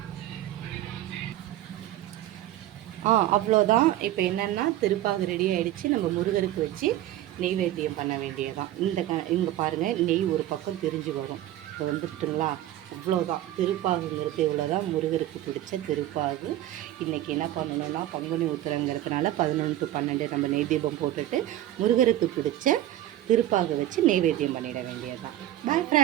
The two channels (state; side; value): quieter; left; 13.7 dB